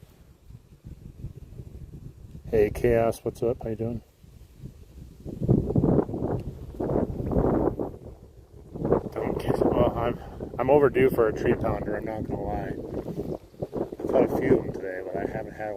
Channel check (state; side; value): identical; both; correlation 1.00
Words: Hey, Chaos, what's up? How you doing? Don't kiss. Well, I'm overdue for a tree pounder. I'm not gonna lie. I've caught a few of them today, but I haven't had